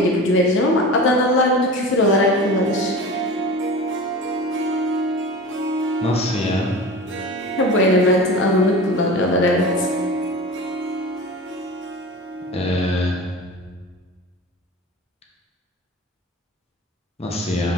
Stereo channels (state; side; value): normal; both; correlation 0.34